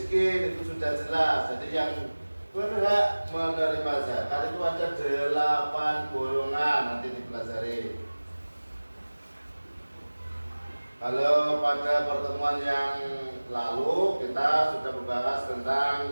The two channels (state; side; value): inverted; both; correlation -1.00